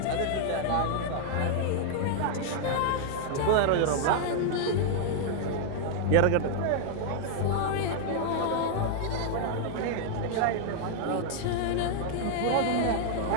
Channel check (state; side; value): different; both; correlation -0.01